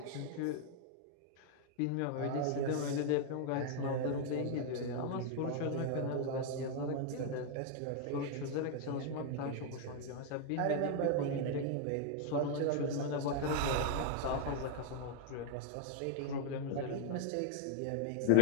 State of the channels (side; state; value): both; different; correlation 0.00